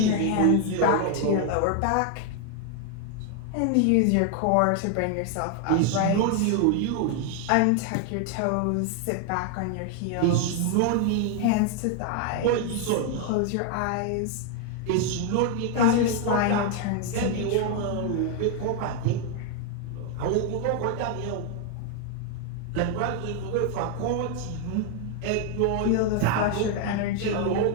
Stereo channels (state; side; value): different; both; correlation 0.00